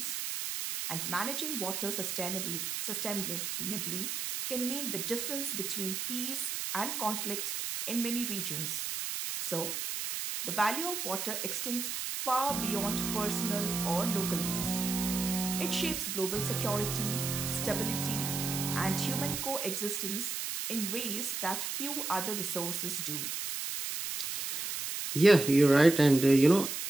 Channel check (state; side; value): noise; right; hiss, 3 dB below the sound